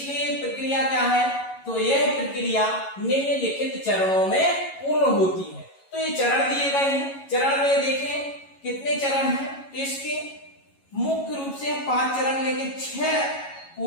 प्रक्रिया क्या है, तो यह प्रक्रिया निम्नलिखित चरणों में पूर्ण होती है। तो ये चरण दिए गए हैं, चरण में देखें कितने चरण हैं। तो इसके मुख्य रूप से 5 चरण लेके 6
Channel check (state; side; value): late; right; 11 ms